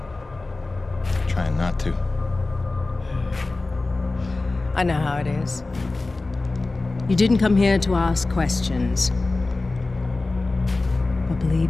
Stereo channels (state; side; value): quieter; right; 3.3 dB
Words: Trying not to. I know how it is. You didn't come here to ask questions. But